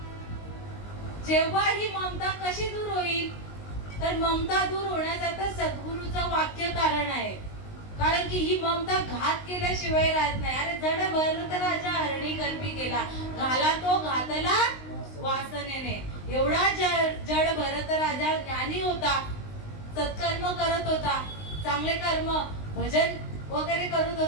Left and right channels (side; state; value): right; late; 19 ms